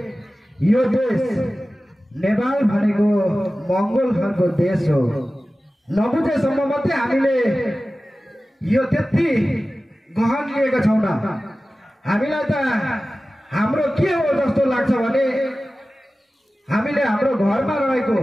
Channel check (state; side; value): normal; both; correlation 0.96